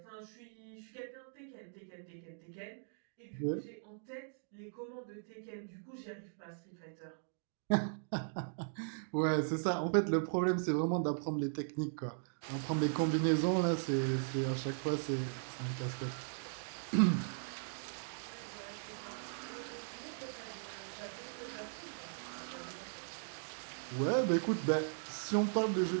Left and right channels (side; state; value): left; silent; digital silence